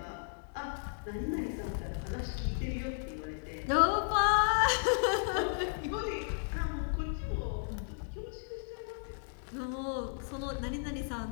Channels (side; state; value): right; silent; digital silence